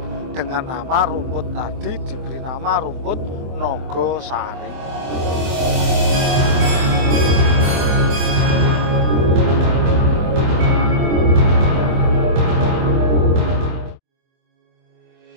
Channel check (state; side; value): late; left; 23 ms